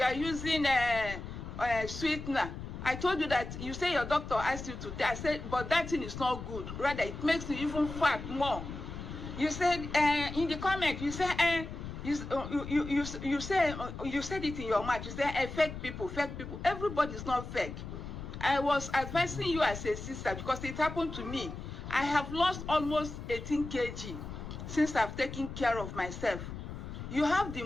are using sweetener. I told you that, you say your doctor asked you to, I said, but that thing is not good. Rather, it makes you even fat more. You said in the comment, you said you said it in your mouth. You said fake people. Everybody is not fake. I was advising you as a sister because it happened to me. I have lost almost 18 kg since I've taken care of myself. You have the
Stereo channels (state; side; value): noise; left; rumble, 9 dB below the sound